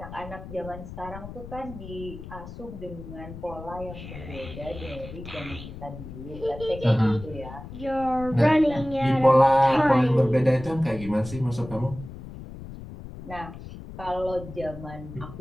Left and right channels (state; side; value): noise; left; rumble, 12 dB below the sound